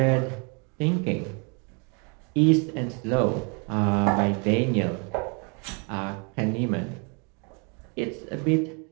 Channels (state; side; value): quieter; left; 35.0 dB